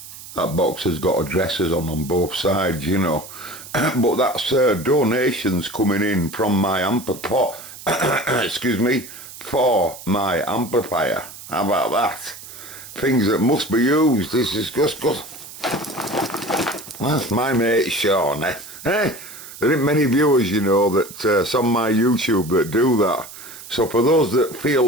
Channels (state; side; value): noise; right; hiss, 15 dB below the sound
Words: box has got addresses on both sides, you know. But that's donations coming in from my amplifier. Excuse me, for my amplifier. How about that? Things that must be used. This is just good. That's my mate Sean, eh? There ain't many viewers, you know, that it's on my YouTube that do that. So for those that feel